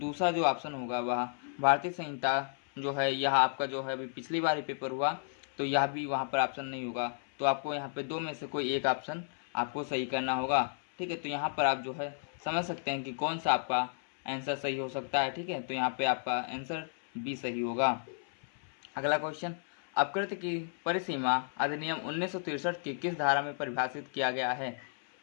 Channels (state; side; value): silent; right; 56 dB below the other